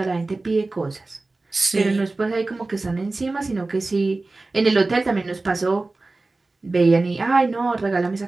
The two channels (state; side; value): quieter; left; 3.3 dB